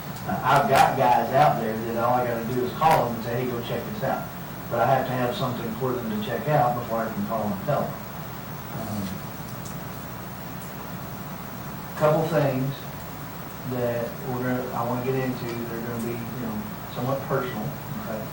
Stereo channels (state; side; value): identical; both; correlation 1.00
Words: I've got guys out there that all I got to do is call them and say, hey, go check this out. But I have to have something for them to check out before I can call and tell them. Couple things that I want to get into that are going to be, you know, somewhat personal, okay?